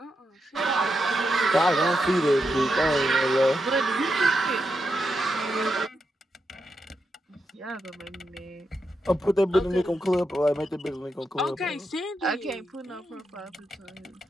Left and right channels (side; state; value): both; normal; correlation 0.85